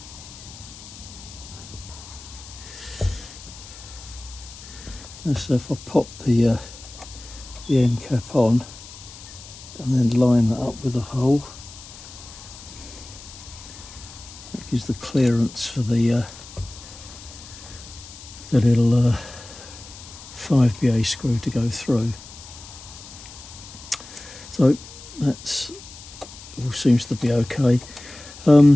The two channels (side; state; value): left; noise; hiss, 16 dB below the sound